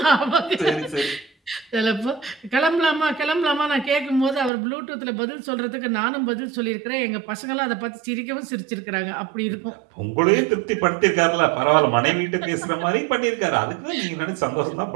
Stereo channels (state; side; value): drops out; left; at 4.5 s